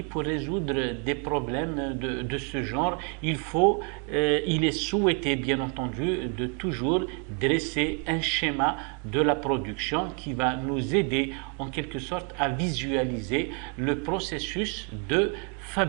pour résoudre des problèmes de ce genre? Il est souhaité, bien entendu, de toujours dresser un schéma de la production qui va nous aider en quelque sorte à visualiser le processus de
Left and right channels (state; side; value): quieter; left; 39.4 dB